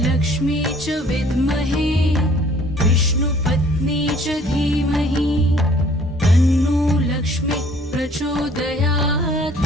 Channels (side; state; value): both; normal; correlation 0.56